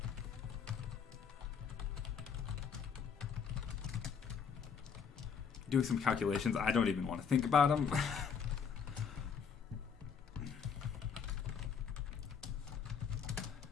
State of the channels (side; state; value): right; quieter; 6.7 dB